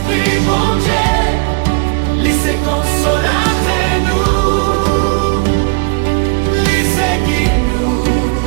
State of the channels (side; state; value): left; quieter; 30.2 dB